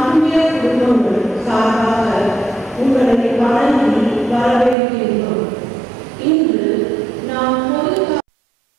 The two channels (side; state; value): left; drops out; at 4.8 s